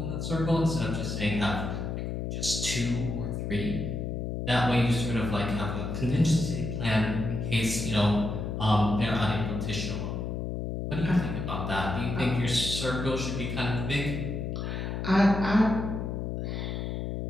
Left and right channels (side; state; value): left; noise; hum, 3 dB below the sound